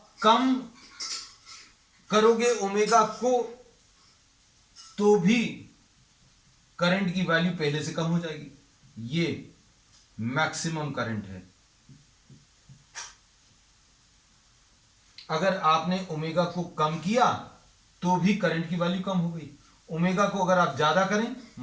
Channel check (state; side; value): identical; both; correlation 1.00